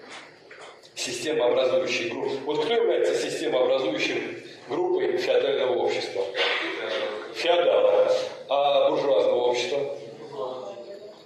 Системообразующие группы. Вот кто является системообразующим группой феодального общества? Феодалы. А буржуазного общества?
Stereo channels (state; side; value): identical; both; correlation 1.00